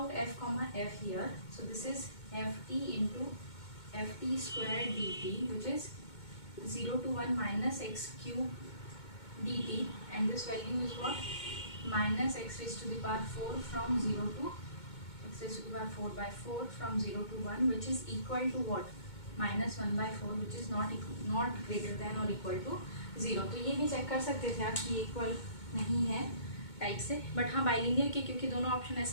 f comma f here, so this is f t into f t square d t which is 0 to 1 minus x cube dt, and this value is what, minus x raised to the power 4 from 0 to x raised to the power 4 by 4 from 0 to 1, which is equal to what, minus 1 by 4, which is not greater than or equal to 0। तो ये भी check कर सकते थे आप कि equal नहीं है टाइप से, बट हाँ बाइलिनियर के, क्योंकि दोनों ऑप्शन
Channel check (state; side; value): late; right; 2.2 ms